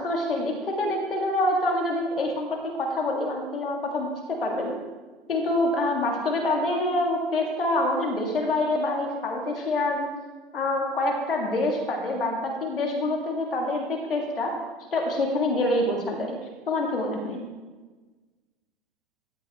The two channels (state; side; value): normal; both; correlation 0.50